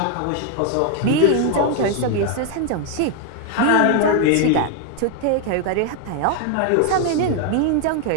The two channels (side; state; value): both; different; correlation 0.01